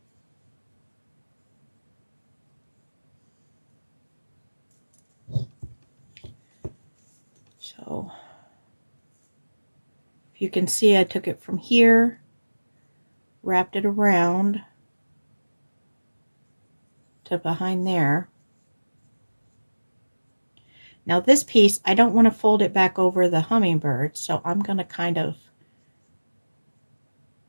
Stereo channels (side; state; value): both; inverted; correlation -1.00